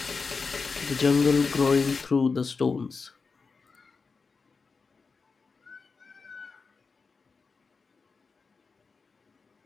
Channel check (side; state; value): right; quieter; 4.7 dB